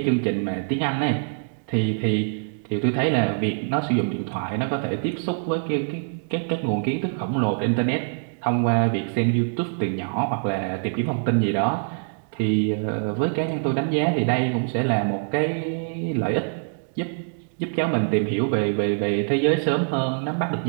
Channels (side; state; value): left; silent; digital silence